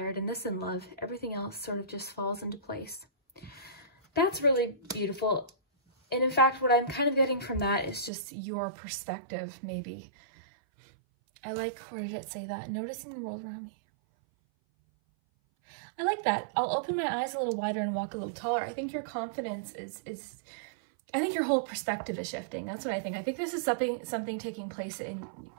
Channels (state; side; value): drops out; left; at 8.1 s